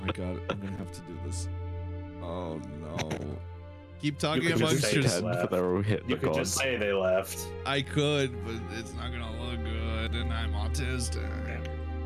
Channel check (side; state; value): both; identical; correlation 1.00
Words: my god, I'm gonna have to do this. Oh no. Keep talking You could amongst just say yourselves. that. But they're all hit You the could just gods. say they left. I could, but it's not gonna look good, and I'm autistic.